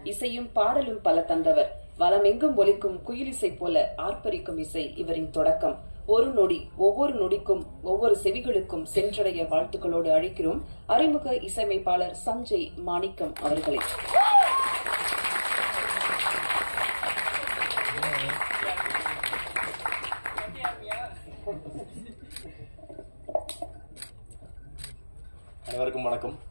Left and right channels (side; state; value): both; inverted; correlation -1.00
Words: இசையும் பாடலும் பல தந்தவர், வலமெங்கும் ஒலிக்கும் குயிலிசை போல ஆர்ப்பரிக்கும் இசை இவரின் தொடக்கம். ஒரு நொடி, ஒவ்வொரு நொடிக்கும் ஒவ்வொரு செவிகளுக்கும் சென்றடைய வாழ்த்துக்களோடு அழைக்கிறோம் அறிமுக இசையமைப்பாளர் சஞ்சய் மாணிக்கம் அவர்களை. அனைவருக்கும் வணக்கம்.